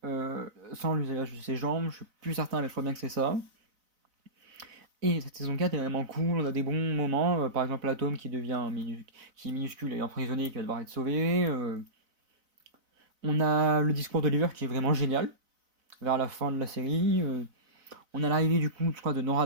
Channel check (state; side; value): late; left; 4.0 ms